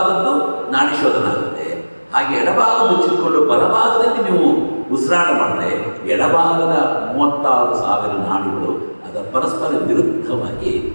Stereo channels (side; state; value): both; inverted; correlation -1.00